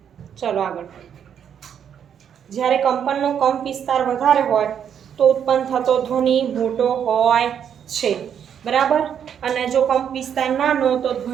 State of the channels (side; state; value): left; quieter; 8.5 dB